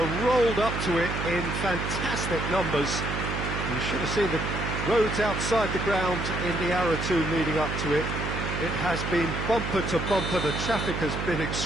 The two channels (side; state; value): right; noise; hum, 3 dB below the sound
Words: rolled up to it in fantastic numbers. You should have seen the roads outside the ground in the hour or two leading up to it. It has been bumper to bumper, the traffic has been